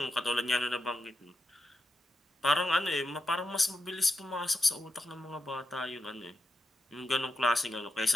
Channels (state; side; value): normal; both; correlation 0.87